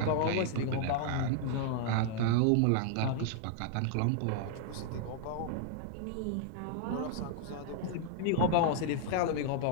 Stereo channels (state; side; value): different; both; correlation -0.01